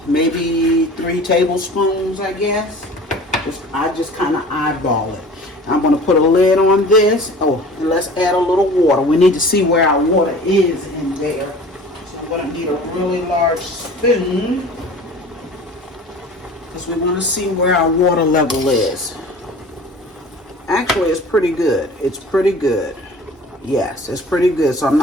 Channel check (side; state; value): both; normal; correlation 0.43